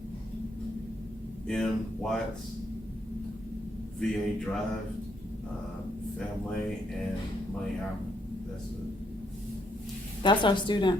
M. Watts, VA Drive, Family, and Money Album. That's it. That's our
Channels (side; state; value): both; normal; correlation 0.74